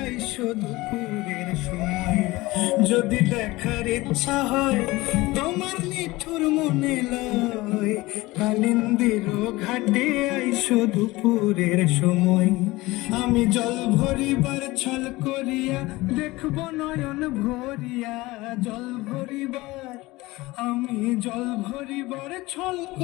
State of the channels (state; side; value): quieter; right; 20.3 dB